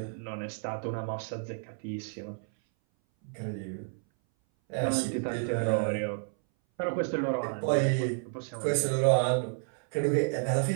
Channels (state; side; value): silent; left; 57 dB below the other